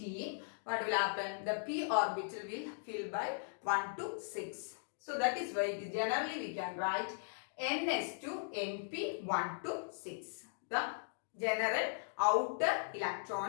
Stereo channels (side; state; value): right; silent; digital silence